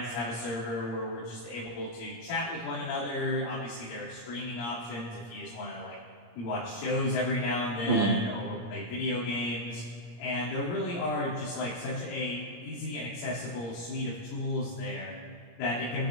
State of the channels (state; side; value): late; right; 17 ms